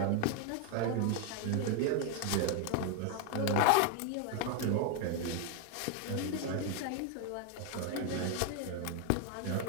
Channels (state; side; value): different; both; correlation 0.01